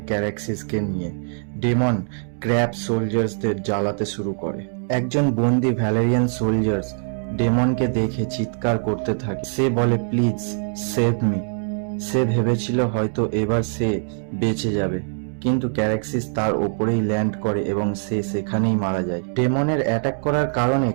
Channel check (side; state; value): left; silent; digital silence